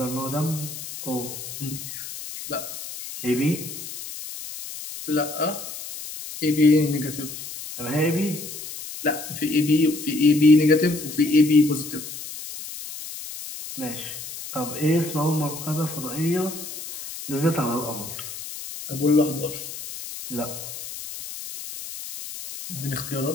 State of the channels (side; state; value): left; noise; hiss, 10 dB below the sound